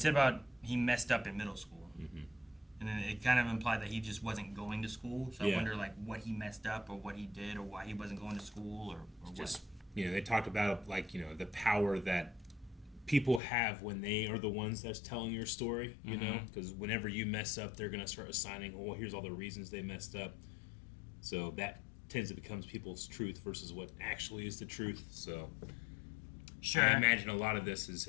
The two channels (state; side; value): drops out; right; at 13.4 s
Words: about he messed up in middle school. And then it kind of implied that he just wasn't going to school. So I wonder, like, what he messed up or what he did or why he wasn't going to school or Just, they talked about, like, the power that people have when they are the ones that's telling your story, you know? Because whenever you mess up, they're going to start assigning, well, here's all the reasons they messed up. So that tends to become people's truth versus what actually is the truth. So Sure. I imagine a lot of this is